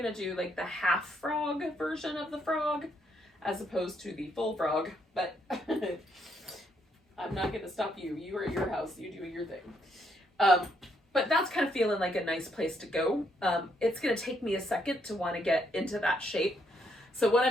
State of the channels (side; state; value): both; normal; correlation 0.74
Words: do like the half frog version of the frog as opposed to the full frog, but I'm not gonna stop you. You are at your house, you do your thing. But that's kind of feeling like a nice place to go. It's gonna take me a second to want to get into that shape. So what